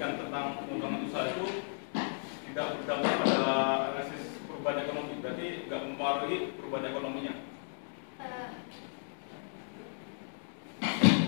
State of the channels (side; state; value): right; silent; digital silence